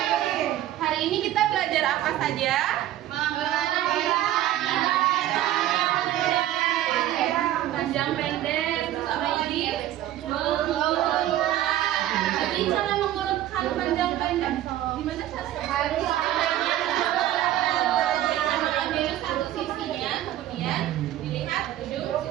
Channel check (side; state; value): left; quieter; 13.3 dB